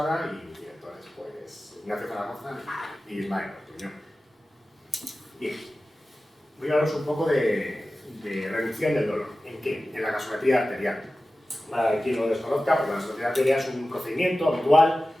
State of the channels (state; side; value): normal; both; correlation 0.95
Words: y mis directores, pues, Ignacio Zaragoza y Ismael Ortuño. Bien, voy a hablaros un poco de reducción del dolor. ¿En qué? En la gasometría arterial. Para quien no lo desconozca, pues la gasometría arterial es un procedimiento habitual